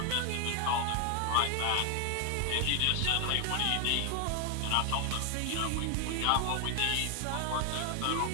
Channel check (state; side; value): different; both; correlation 0.00